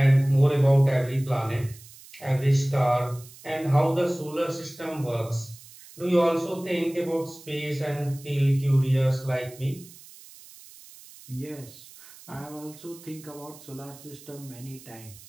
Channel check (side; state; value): right; noise; hiss, 20 dB below the sound